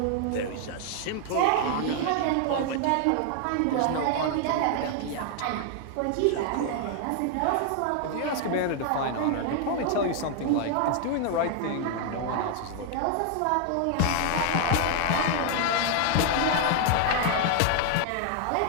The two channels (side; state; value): both; different; correlation 0.00